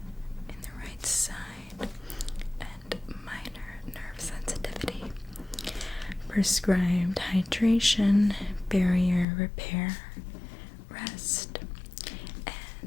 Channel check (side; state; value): right; drops out; at 9.2 s